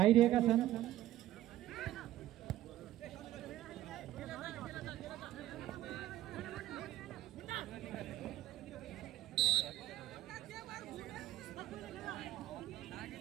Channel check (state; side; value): quieter; left; 14.1 dB